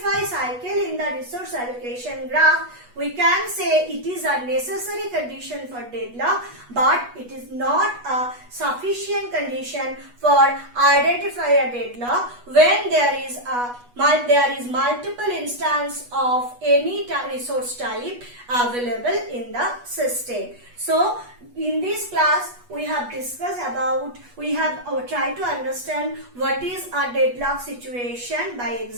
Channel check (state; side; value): late; left; 8.2 ms